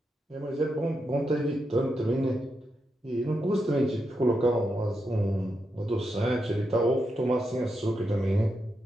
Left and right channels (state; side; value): normal; both; correlation 0.85